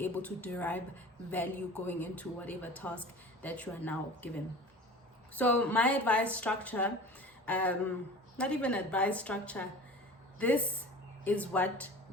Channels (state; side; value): normal; both; correlation 0.39